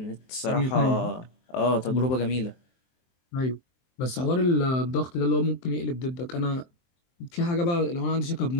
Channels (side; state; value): right; late; 23 ms